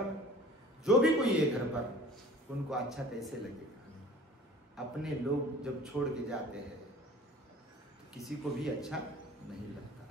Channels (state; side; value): normal; both; correlation 0.45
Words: जो भी कोई है घर पर, उनको अच्छा कैसे लगेगा? अपने लोग जब छोड़ के जाते हैं तो किसी को भी अच्छा नहीं लगता